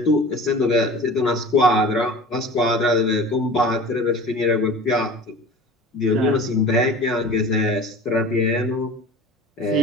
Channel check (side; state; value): both; normal; correlation 0.39